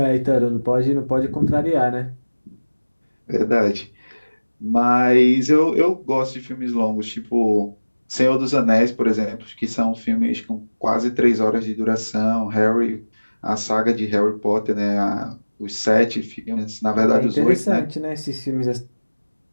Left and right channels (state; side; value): inverted; both; correlation -1.00